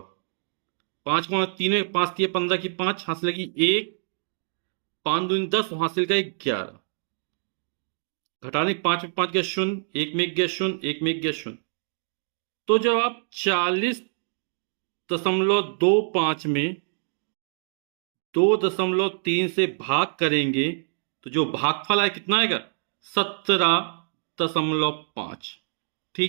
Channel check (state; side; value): silent; left; digital silence